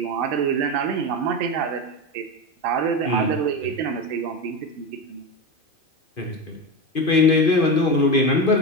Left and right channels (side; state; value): right; late; 2.5 ms